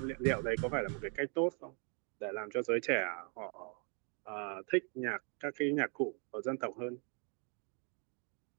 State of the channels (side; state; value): left; quieter; 39.3 dB